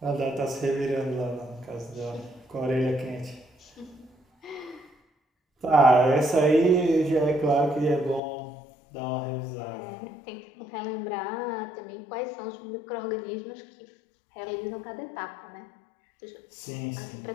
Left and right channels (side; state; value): right; drops out; at 8.2 s